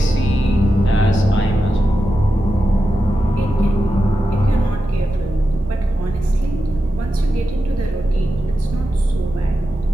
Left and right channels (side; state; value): both; normal; correlation 0.90